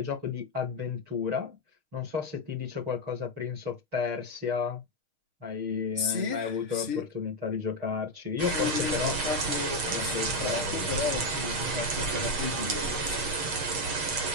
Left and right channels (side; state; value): left; late; 6.4 ms